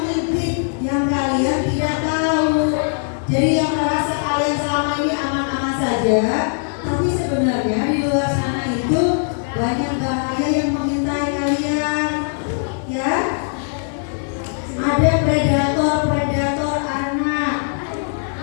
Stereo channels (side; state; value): right; silent; digital silence